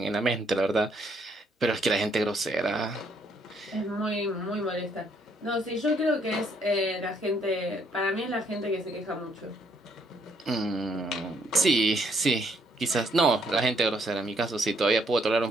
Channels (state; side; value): normal; both; correlation 0.69